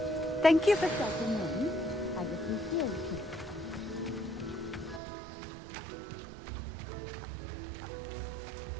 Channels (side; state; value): left; drops out; at 5.0 s